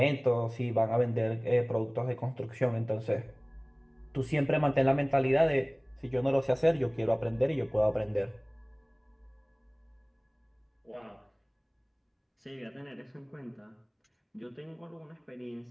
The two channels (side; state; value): both; identical; correlation 1.00